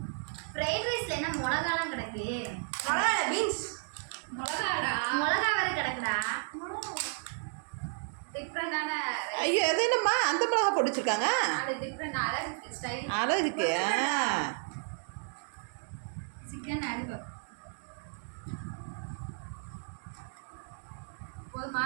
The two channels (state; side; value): silent; left; 56 dB below the other